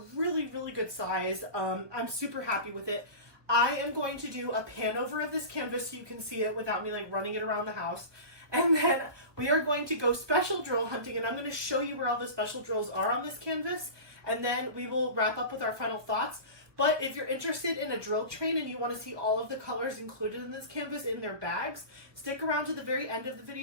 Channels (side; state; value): left; late; 1.2 ms